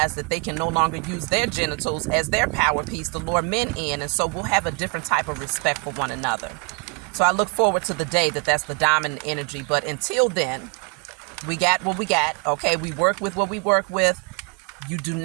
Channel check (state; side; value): quieter; left; 32.8 dB